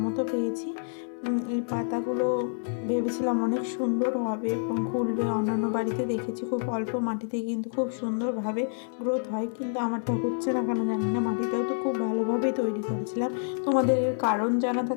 মতো পেয়েছি। এই পাতাগুলো ভেবেছিলাম অনেক সুন্দর হবে এবং খুলবে। অন্যান্য বাড়িতে দেখেছি খুব অল্প মাটিতে কিন্তু খুব সুন্দরভাবে গ্রোথ হয়, কিন্তু আমারটা হচ্ছে না কেন জানি না। মাটিটাও তো খুব ভালোভাবেই তৈরি করেছিলাম। তোমাদের এর কারণ জানা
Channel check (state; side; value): silent; right; 59 dB below the other